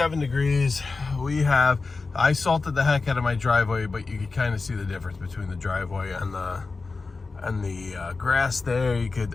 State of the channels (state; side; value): quieter; right; 4.0 dB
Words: degrees. I salted the heck out of my driveway, but you could kind of see the difference between the driveway and the grass there. I